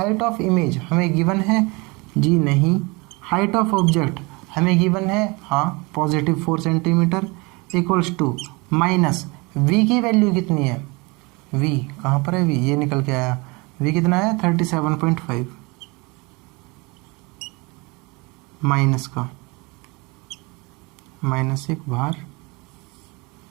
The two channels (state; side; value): quieter; left; 26.7 dB